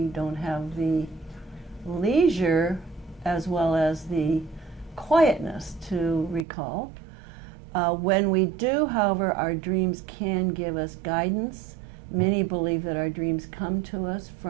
don't have the leisure as well as the quietness to recall. When we do, however, our dreams can give us guidance. Many believe that our dreams come to us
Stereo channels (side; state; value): left; drops out; at 6.5 s